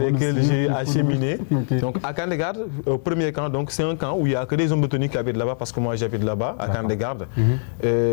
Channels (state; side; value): silent; right; digital silence